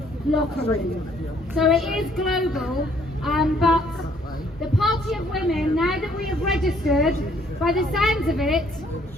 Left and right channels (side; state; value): both; normal; correlation 0.64